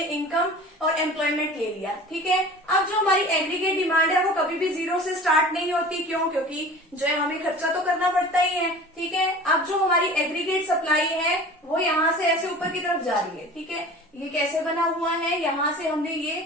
इनकम और एम्प्लॉयमेंट ले लिया। ठीक है, अब जो हमारी एग्रीगेट डिमांड है वो कभी भी जीरो से स्टार्ट नहीं होती, क्यों, क्योंकि जो है हमें खर्चा तो करना पड़ता ही है। ठीक है, अब जो हमारी एग्रीगेट सप्लाई है वो यहाँ से ऐसे ऊपर की तरफ जा रही है। ठीक है, ये कैसे बना हुआ है, यहाँ से हमने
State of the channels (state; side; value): normal; both; correlation 0.40